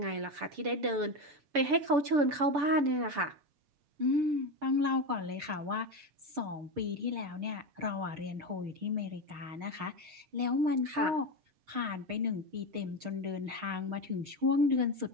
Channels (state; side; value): late; left; 6.9 ms